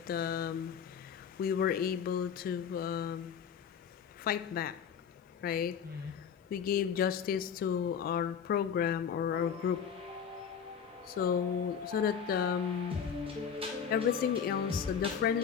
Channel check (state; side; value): quieter; right; 7.4 dB